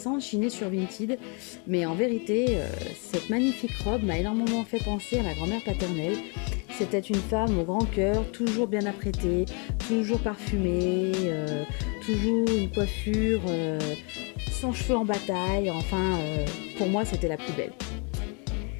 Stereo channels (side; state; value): right; quieter; 35.9 dB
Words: chinée sur Vinted, mais en vérité, cette magnifique robe m'a énormément fait penser à ma grand-mère paternelle. C'était une femme au grand cœur, toujours bien apprêtée, toujours parfumée, toujours une coiffure sans cheveux en bataille, enfin, pour moi c'était la plus belle.